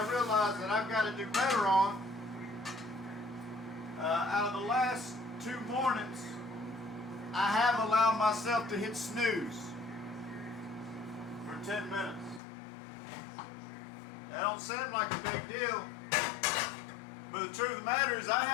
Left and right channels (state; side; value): drops out; right; at 12.4 s